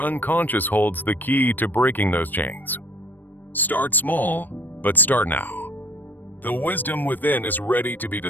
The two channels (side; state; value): right; late; 0.089 ms